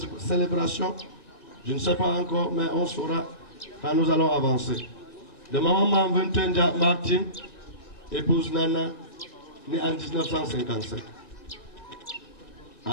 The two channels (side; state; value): right; late; 1.8 ms